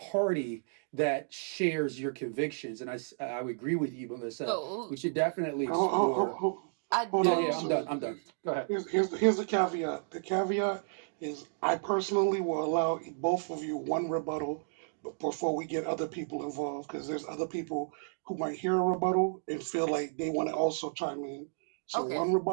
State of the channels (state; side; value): silent; left; digital silence